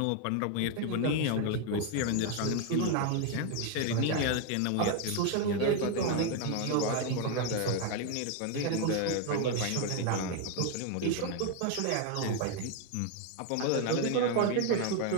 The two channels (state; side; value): different; both; correlation 0.01